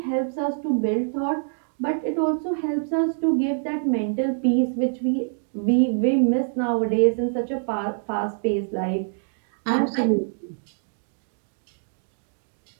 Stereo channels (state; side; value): silent; left; digital silence